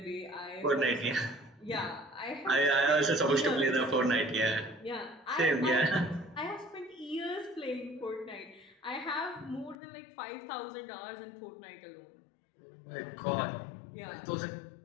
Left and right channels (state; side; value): drops out; right; at 9.8 s